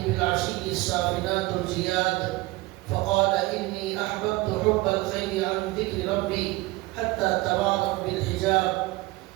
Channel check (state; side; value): quieter; left; 20.8 dB